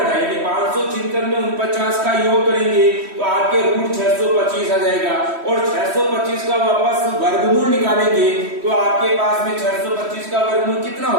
है, यानी 576 में 49 का योग करेंगे तो आपके रूट 625 आ जाएगा, और 625 का वापस वर्गमूल निकालेंगे तो आपके पास में 625 का वर्गमूल कितना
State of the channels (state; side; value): late; left; 3.1 ms